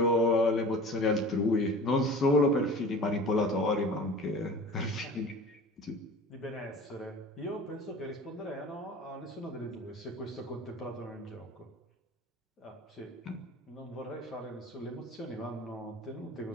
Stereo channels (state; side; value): normal; both; correlation 0.40